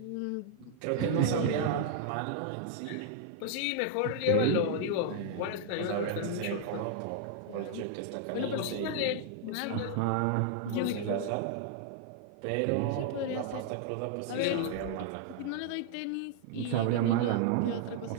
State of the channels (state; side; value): different; both; correlation -0.01